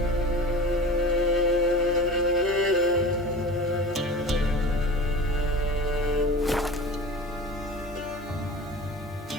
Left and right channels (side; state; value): both; normal; correlation 0.35